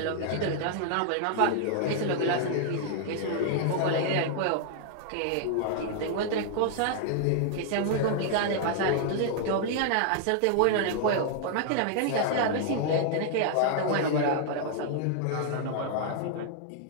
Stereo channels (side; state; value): both; different; correlation -0.01